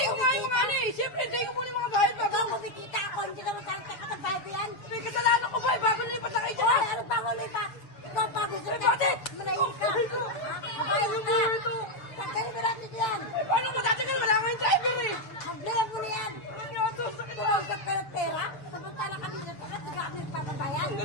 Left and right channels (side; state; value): right; late; 7.0 ms